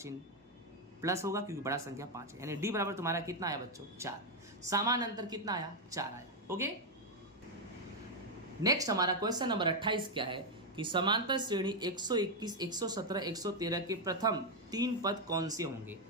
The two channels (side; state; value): both; normal; correlation 0.02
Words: प्लस होगा क्योंकि बड़ा संख्या 5 है, यानी d बराबर तुम्हारा कितना आया बच्चों? 4। सामान्य अंतर कितना आया? 4 आया। ओके, नेक्स्ट हमारा क्वेश्चन नंबर 28 क्या है कि समांतर श्रेणी 121, 117, 113 के प्रथम 3 पद कौन से होंगे।